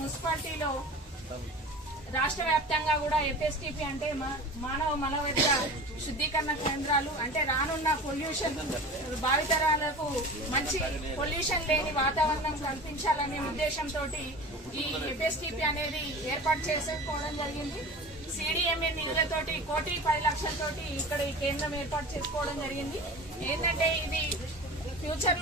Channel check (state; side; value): normal; both; correlation 0.35